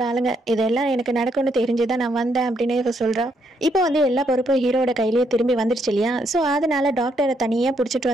ஆளுங்க. இதெல்லாம் எனக்கு நடக்கும்னு தெரிஞ்சுதான் நான் வந்தேன் அப்படின்னு இவ சொல்றா. இப்போ வந்து எல்லா பொறுப்பும் ஹீரோட கையிலேயே திரும்பி வந்துருச்சு இல்லையா. ஸோ அதனால டாக்டரை தனியா பிடிச்சிட்டு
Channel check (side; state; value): both; normal; correlation 0.75